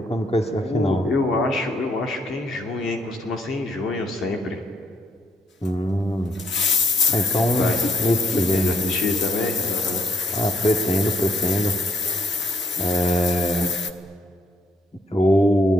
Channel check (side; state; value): both; normal; correlation 0.71